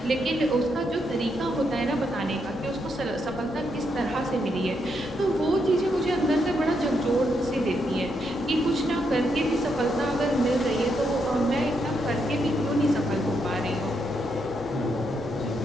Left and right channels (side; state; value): both; normal; correlation 0.79